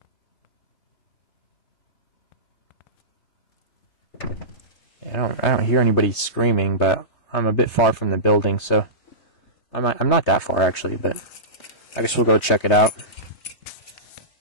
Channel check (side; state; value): right; late; 3.2 ms